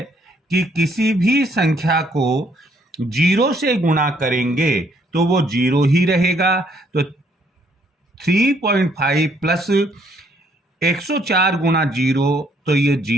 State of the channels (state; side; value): normal; both; correlation 0.67